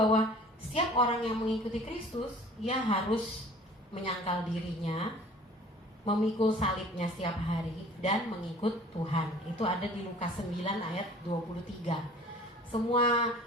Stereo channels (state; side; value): normal; both; correlation 0.48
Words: setiap orang yang mengikuti Kristus, dia harus menyangkal dirinya, memikul salibnya setiap hari dan mengikut Tuhan. Itu ada di Lukas 9 ayat 23. Semua